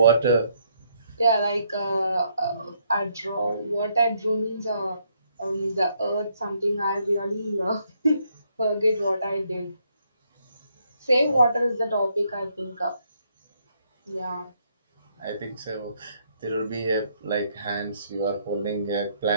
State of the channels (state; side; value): inverted; both; correlation -0.73